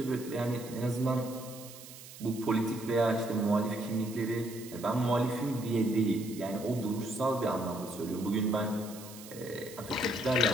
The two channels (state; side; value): noise; right; hiss, 16 dB below the sound